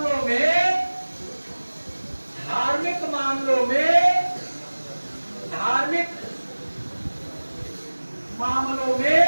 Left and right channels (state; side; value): inverted; both; correlation -1.00